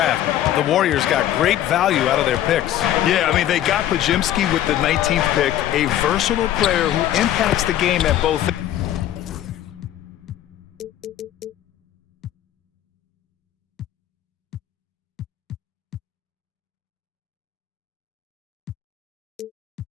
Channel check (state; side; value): quieter; right; 12.1 dB